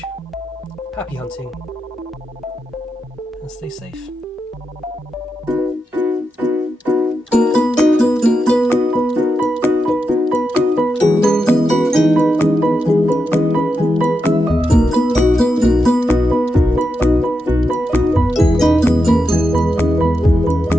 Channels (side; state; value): both; normal; correlation 0.87